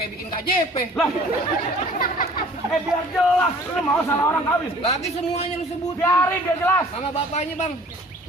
bikin KJP? Lah. Biar jelas. Lu mau salah orang kawin. Lagi semuanya lu sebut. Biarin biar jelas. Sama bapaknya bang.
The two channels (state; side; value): normal; both; correlation 0.51